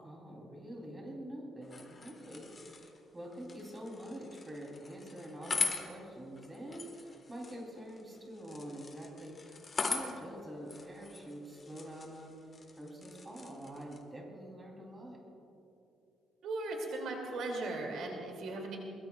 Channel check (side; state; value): both; normal; correlation 0.80